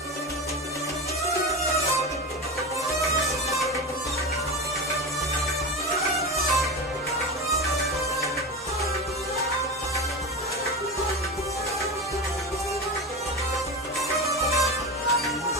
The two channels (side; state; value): both; normal; correlation 0.23